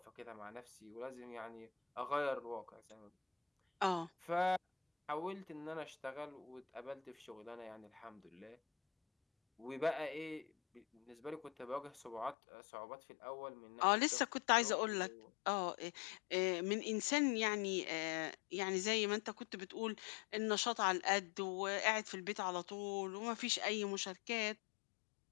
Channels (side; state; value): right; drops out; at 12.4 s